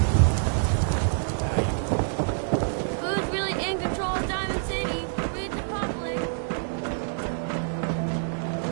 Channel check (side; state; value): left; silent; digital silence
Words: Who's really in control of Diamond City? Read the public.